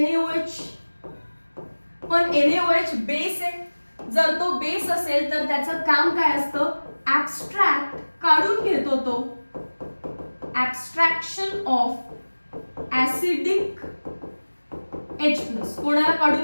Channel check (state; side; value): inverted; both; correlation -1.00